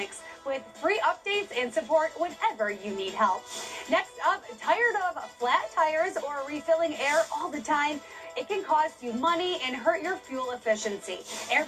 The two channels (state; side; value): identical; both; correlation 1.00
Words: with free updates and support whenever you need help. Next up, tired of flat tires or refilling air all the time? It can cost you money and hurt your fuel efficiency.